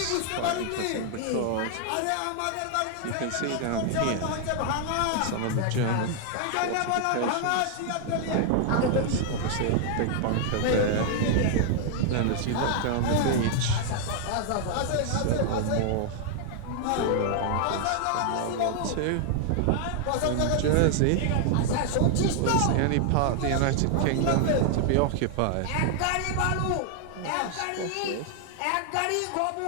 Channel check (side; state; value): both; different; correlation 0.00